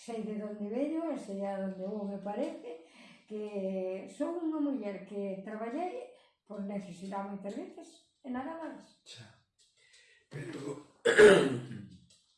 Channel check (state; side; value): identical; both; correlation 1.00